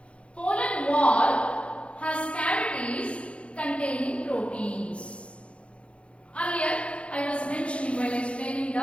Pollen wall has cavities containing proteins. Earlier, I was mentioning while explaining the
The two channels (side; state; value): right; late; 0.060 ms